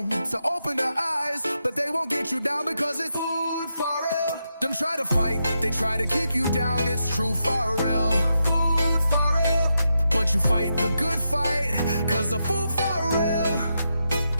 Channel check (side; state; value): both; inverted; correlation -0.85